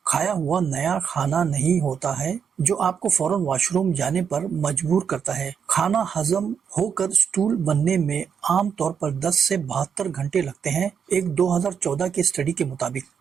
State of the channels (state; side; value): quieter; left; 7.2 dB